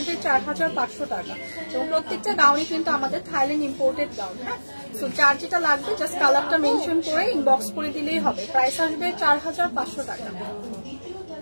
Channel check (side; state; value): both; inverted; correlation -1.00